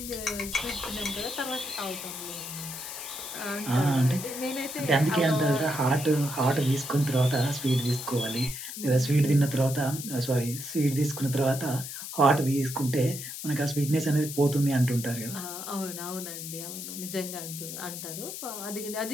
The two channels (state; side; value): noise; left; hiss, 8 dB below the sound